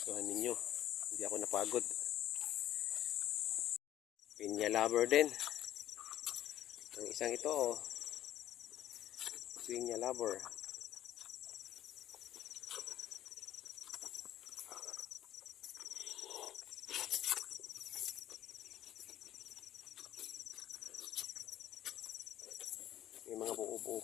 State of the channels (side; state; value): right; quieter; 12.7 dB